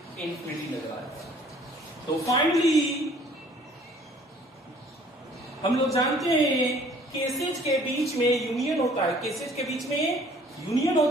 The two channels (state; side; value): normal; both; correlation 0.56